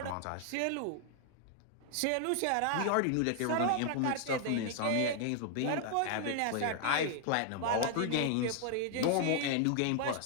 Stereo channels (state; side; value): different; both; correlation 0.00